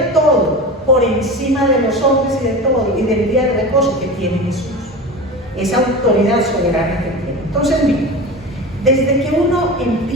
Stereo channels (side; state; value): both; normal; correlation 0.29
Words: todo, por encima de los hombres y de todo, y del día de reposo que tiene Jesús. Esa autoridad soberana que tiene. Entonces, miren, desde que uno